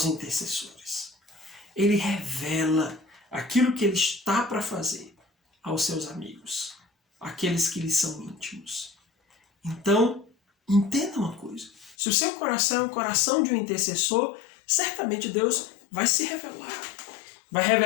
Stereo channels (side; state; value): right; drops out; at 12.0 s